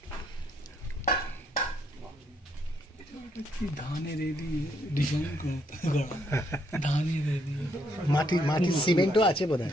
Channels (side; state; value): both; normal; correlation 0.72